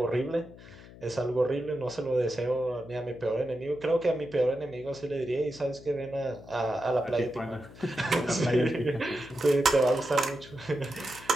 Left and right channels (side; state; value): left; noise; hum, 18 dB below the sound